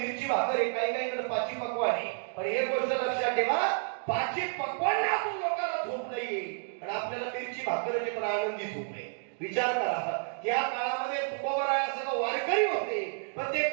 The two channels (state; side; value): silent; left; digital silence